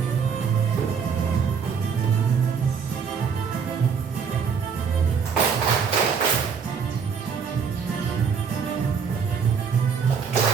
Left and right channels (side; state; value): left; quieter; 6.3 dB